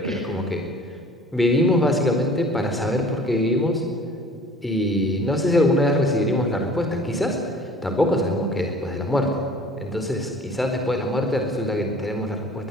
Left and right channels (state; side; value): normal; both; correlation 0.48